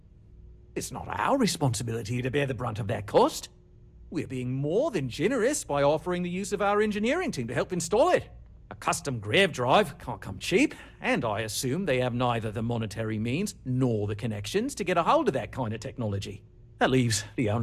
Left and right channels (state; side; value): identical; both; correlation 1.00